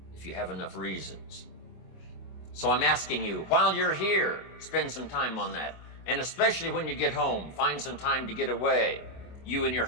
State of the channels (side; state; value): right; late; 25 ms